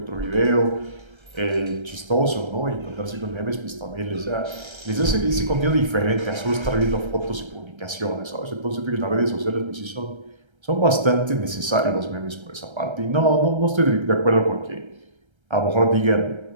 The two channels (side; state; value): left; late; 1.3 ms